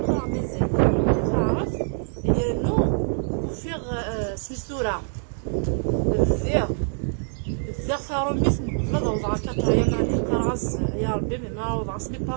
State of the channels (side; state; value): left; silent; digital silence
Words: قرا مزيان تعرف يا نو وفيغ سميتورا الذير ثاروميث نقبل وضع كاترا يماني قراص يا ربي ما وضع سمي